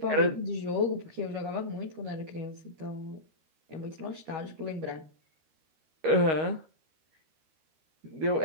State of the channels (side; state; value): left; late; 13 ms